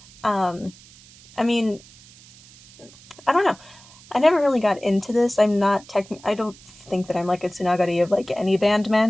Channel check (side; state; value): right; noise; hiss, 23 dB below the sound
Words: I mean, I don't know. I never really got into this. I don't think that I'm like a Tsunagari of like any